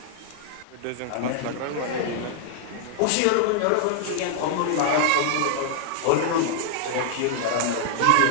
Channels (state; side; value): different; both; correlation -0.01